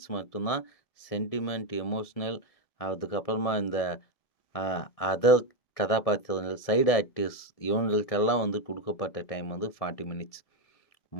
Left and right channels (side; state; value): right; late; 1.6 ms